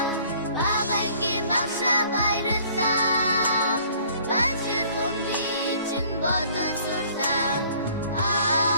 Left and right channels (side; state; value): both; inverted; correlation -0.56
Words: багагийн багшаа баярлалаа балчирхан бичин бодож сурлаа